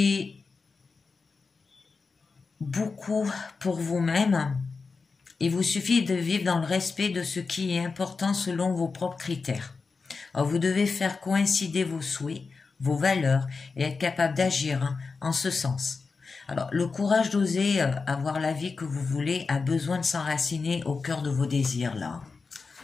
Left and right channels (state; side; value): quieter; right; 4.5 dB